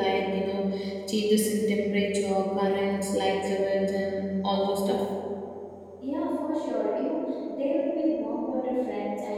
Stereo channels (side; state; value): both; identical; correlation 1.00